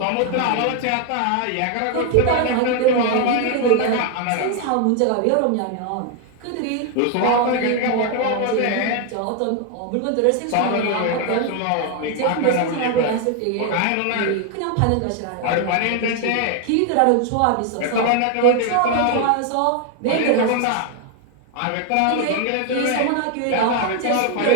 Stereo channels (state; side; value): different; both; correlation 0.01